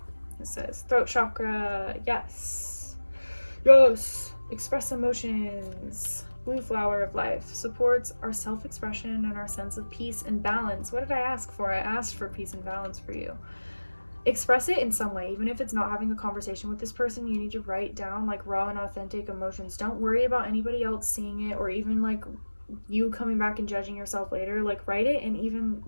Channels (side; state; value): both; inverted; correlation -1.00